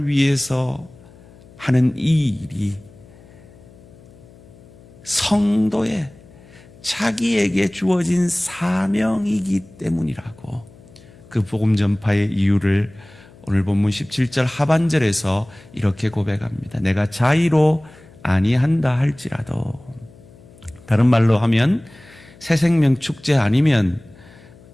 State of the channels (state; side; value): noise; left; hum, 23 dB below the sound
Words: 위해서 하는 이 일이 성도의 자기에게 주어진 사명이기 때문이라고 그 복음 전파의 이유를 오늘 본문 17절 하반절에서 이렇게 고백합니다. 내가 자의로 아니한다 할지라도, 다른 말로 하면 새생명 축제 아니면